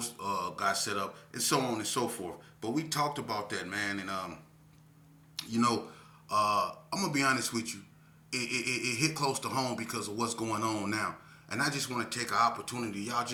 got set up and so on and so forth. But we talked about that, man. And, you know, I'm going to be honest with you. It hit close to home because of what's going on now. And I just want to take an opportunity. Y'all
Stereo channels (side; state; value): both; identical; correlation 1.00